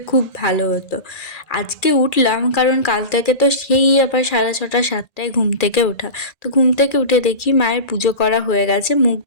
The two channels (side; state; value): right; late; 1.8 ms